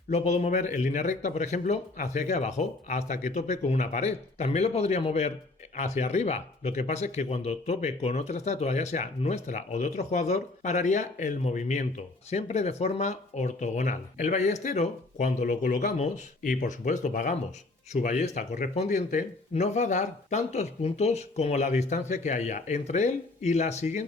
lo puedo mover en línea recta, por ejemplo, hacia aquí abajo, hasta que tope con una pared. También lo podría mover hacia arriba. Lo que pasa es que cuando tope con otra estatua, ya sea nuestra o de otro jugador, pararía el movimiento, siempre de forma ortogonal. El ballestero, cuando lo colocamos, y por supuesto pagamos su ballesta correspondiente, nos va a dar tantos puntos como la distancia que haya entre él y la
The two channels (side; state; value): right; quieter; 3.1 dB